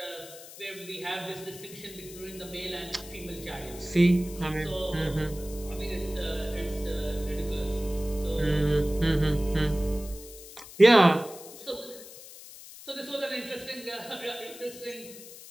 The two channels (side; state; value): left; noise; hiss, 16 dB below the sound